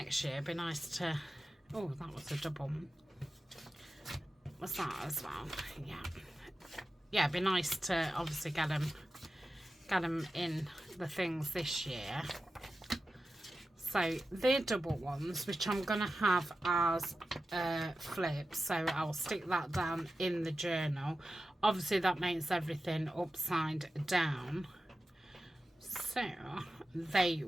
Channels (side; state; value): both; normal; correlation 0.93